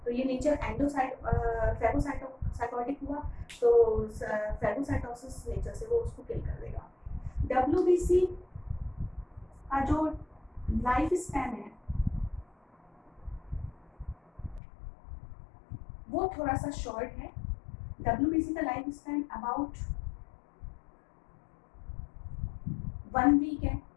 तो ये नेचर फैगोसाइटोटिक हुआ, तो फैगोसाइटोसिस नेचर से वो उसको किल कर देगा. WBC का जो लाइफ स्पैन है वो थोड़ा सा शॉर्ट है. WBC का लाइफ स्पैन अबाउट 1 वीक है.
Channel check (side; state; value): right; drops out; at 14.6 s